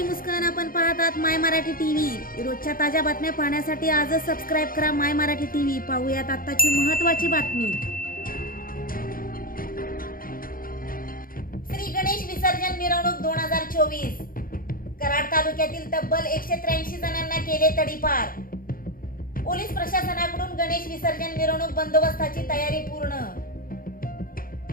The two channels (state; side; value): late; right; 0.41 ms